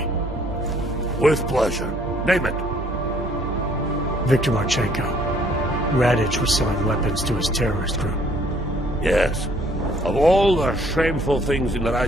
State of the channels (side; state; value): both; normal; correlation 0.62